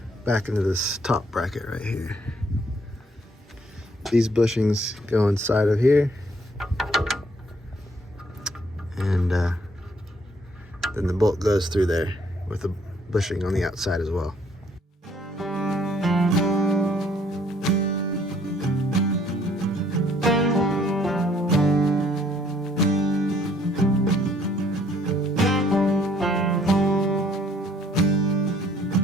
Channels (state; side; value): normal; both; correlation 0.64